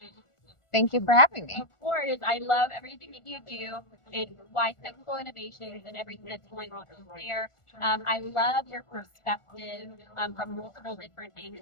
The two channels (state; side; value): late; right; 1.4 ms